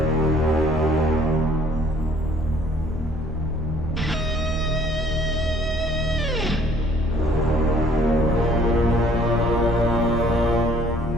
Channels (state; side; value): normal; both; correlation 0.58